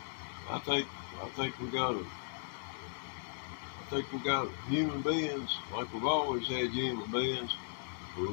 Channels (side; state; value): right; silent; digital silence